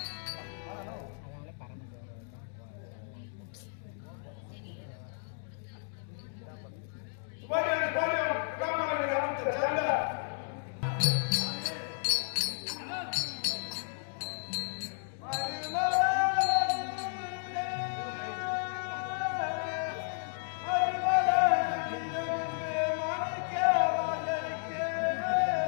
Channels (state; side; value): silent; right; digital silence